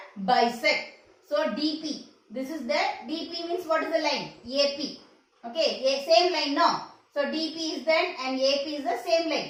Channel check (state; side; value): identical; both; correlation 1.00